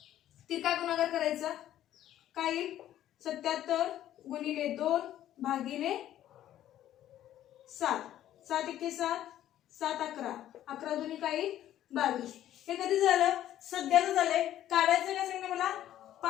तिरका गुणाकार करायचा. काय येईल? 77 गुणिले 2 भागिले 7. 7 एके 7, 7 11. 11 दुनी काय येईल? 22. हे कधी झालं? सध्याचं झालंय. काढायचं काय सांगितलं मला?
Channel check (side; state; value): right; quieter; 12.3 dB